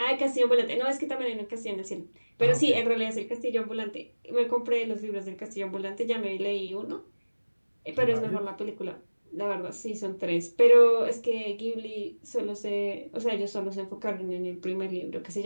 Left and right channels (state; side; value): inverted; both; correlation -1.00